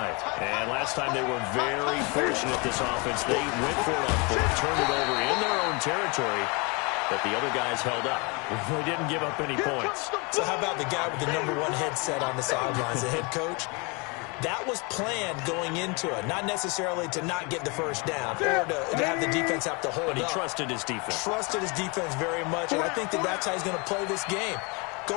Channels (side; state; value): right; quieter; 30.0 dB